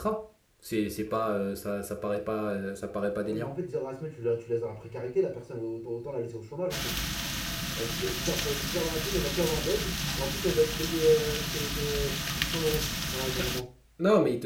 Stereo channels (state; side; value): identical; both; correlation 1.00